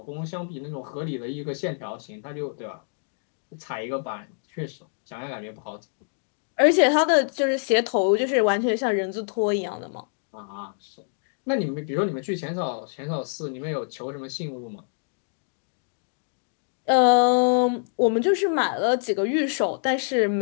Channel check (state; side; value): silent; right; 61 dB below the other